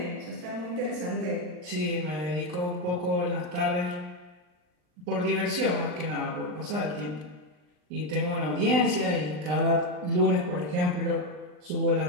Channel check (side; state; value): left; late; 39 ms